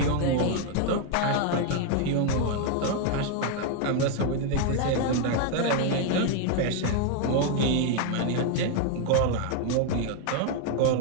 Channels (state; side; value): different; both; correlation 0.00